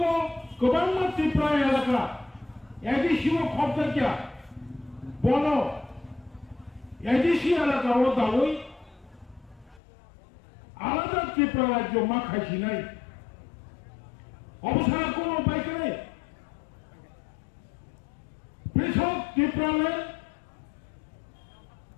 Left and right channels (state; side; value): drops out; right; at 9.8 s